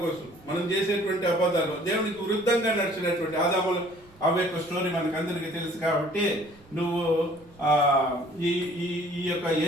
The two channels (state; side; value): noise; right; rumble, 27 dB below the sound